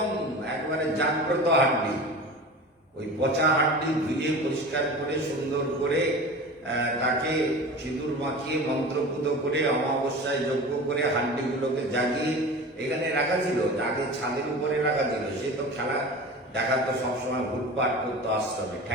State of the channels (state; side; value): normal; both; correlation 0.34